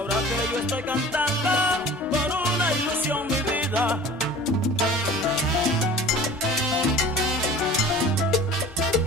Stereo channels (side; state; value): both; normal; correlation 0.42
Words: que yo estoy cantando por una ilusión mi vida.